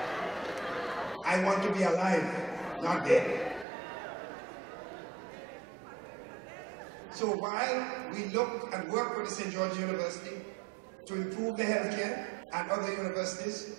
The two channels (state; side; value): drops out; left; at 3.7 s